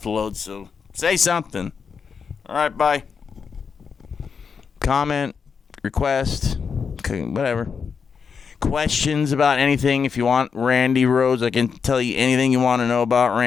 so say something. Alright, bye. Comment, request, whatever. Questions about anything. If you want Randy Rhodes, I can tell you anything you want to know about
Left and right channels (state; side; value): quieter; right; 6.0 dB